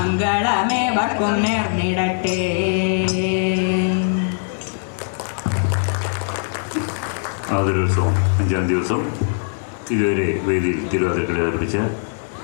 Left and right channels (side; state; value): right; silent; digital silence